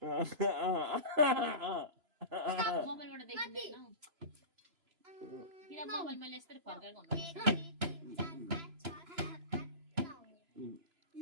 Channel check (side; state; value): left; late; 3.0 ms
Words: मोबाइलबाट देखिँदैन किन मोबाइल मैले यस्तै फर्काएको